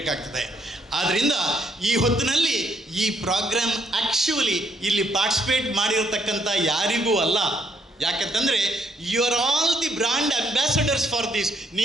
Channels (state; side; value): normal; both; correlation 0.72